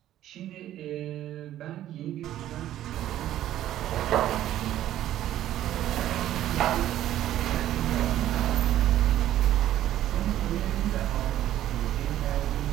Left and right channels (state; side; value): quieter; left; 12.7 dB